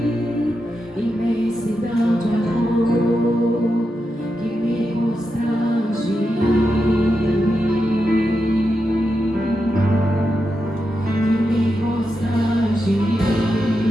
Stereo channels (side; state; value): both; normal; correlation 0.87